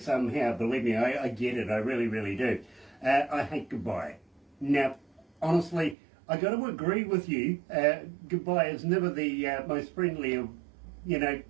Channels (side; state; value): left; drops out; at 6.0 s